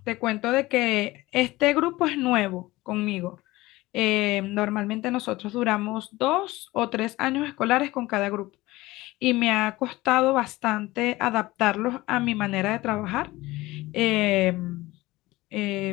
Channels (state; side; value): quieter; right; 19.2 dB